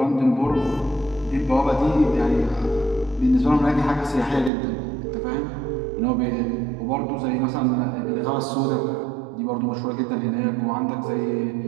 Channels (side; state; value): left; drops out; at 4.5 s